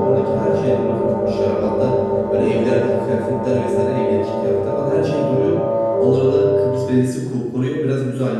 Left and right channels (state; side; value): identical; both; correlation 1.00